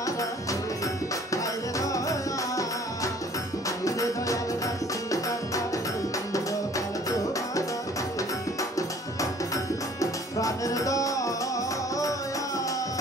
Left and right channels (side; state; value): both; normal; correlation 0.53